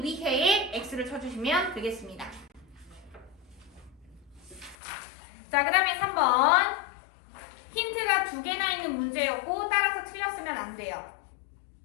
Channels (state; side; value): drops out; right; at 4.8 s